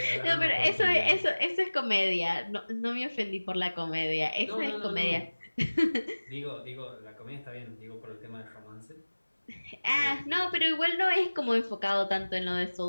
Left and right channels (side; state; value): both; inverted; correlation -1.00